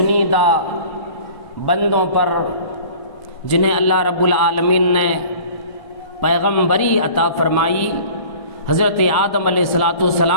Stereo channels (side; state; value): right; late; 1.1 ms